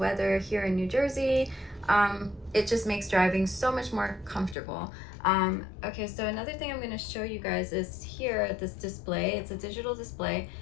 here in New Jersey. It just makes driving so much more comfortable. Okay, so another thing I'm going to show you guys is here, this display. It's a digital display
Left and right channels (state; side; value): drops out; right; at 4.5 s